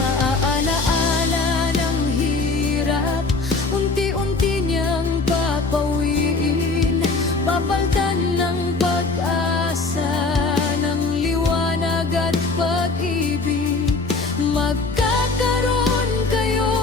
ng hirap, unti-unti niyang papawiin, papaltan ng pag-asa.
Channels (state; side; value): quieter; right; 3.8 dB